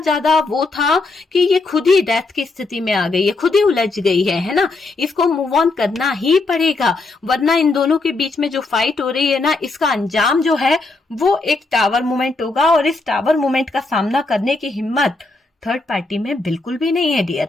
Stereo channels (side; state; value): right; quieter; 3.4 dB